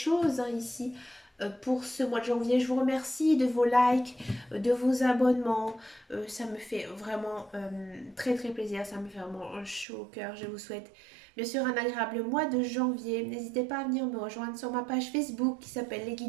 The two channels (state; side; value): drops out; left; at 9.9 s